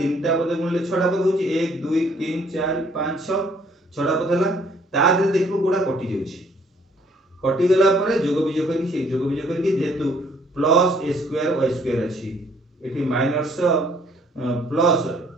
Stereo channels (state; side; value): normal; both; correlation 0.62